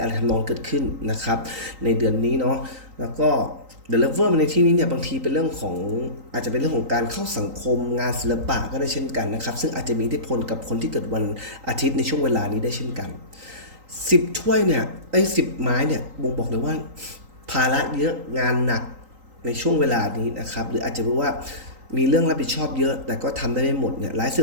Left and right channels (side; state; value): left; late; 3.8 ms